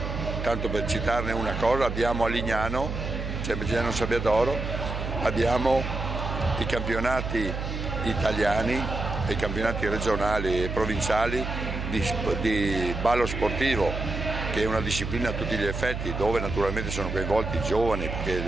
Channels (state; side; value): noise; right; hum, 5 dB below the sound